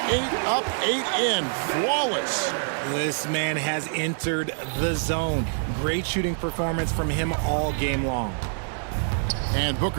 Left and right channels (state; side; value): silent; left; digital silence